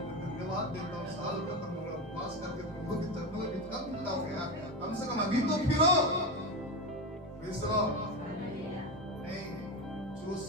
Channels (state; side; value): normal; both; correlation 0.18